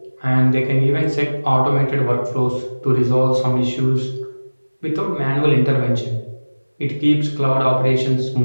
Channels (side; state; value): both; inverted; correlation -1.00